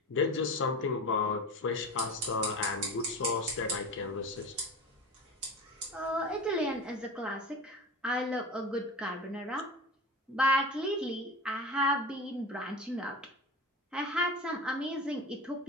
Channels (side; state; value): both; normal; correlation 0.30